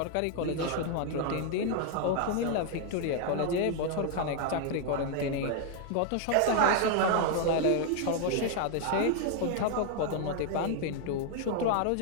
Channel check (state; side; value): different; both; correlation 0.00